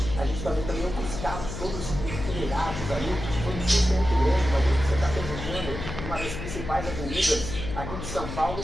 A gente também os carros todos enfileirados ali, foi um susto muito grande, uma vez que você está transitando uma das principais avenidas aqui de São Paulo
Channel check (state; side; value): noise; left; hum, 7 dB below the sound